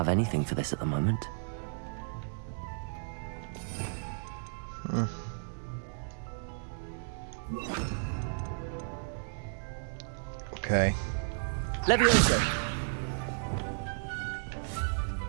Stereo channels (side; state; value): left; silent; digital silence